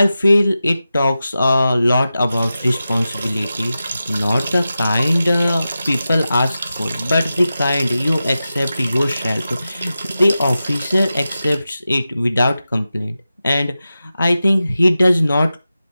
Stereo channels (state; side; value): inverted; both; correlation -0.93